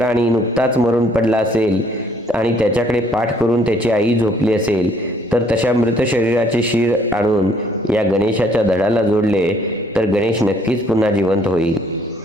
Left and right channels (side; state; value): both; normal; correlation 0.63